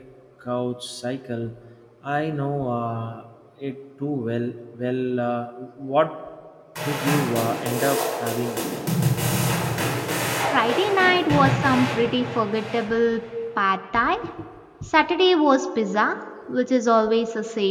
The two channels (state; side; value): identical; both; correlation 1.00